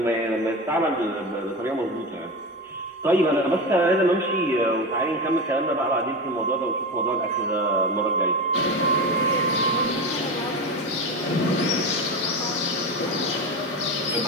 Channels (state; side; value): normal; both; correlation 0.22